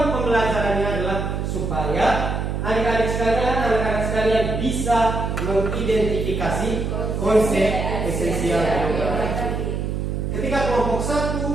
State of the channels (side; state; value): right; noise; hum, 2 dB below the sound